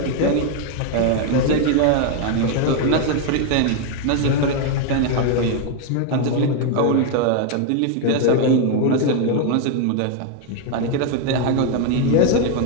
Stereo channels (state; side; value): different; both; correlation 0.01